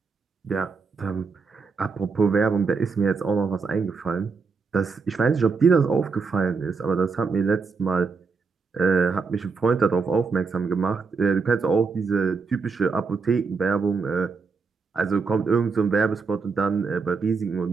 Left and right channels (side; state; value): left; quieter; 4.8 dB